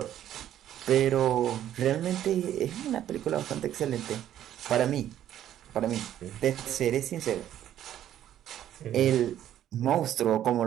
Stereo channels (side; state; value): left; quieter; 11.4 dB